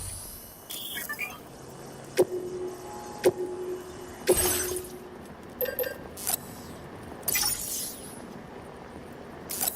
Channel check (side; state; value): both; identical; correlation 1.00